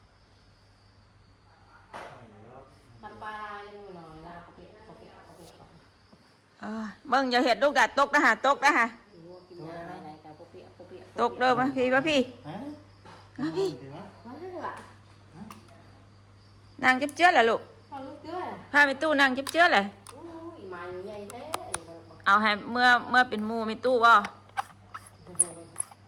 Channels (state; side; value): identical; both; correlation 1.00